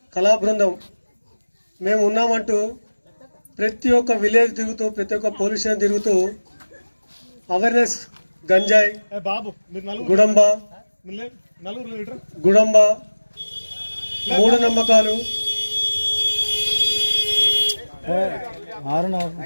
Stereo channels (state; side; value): inverted; both; correlation -1.00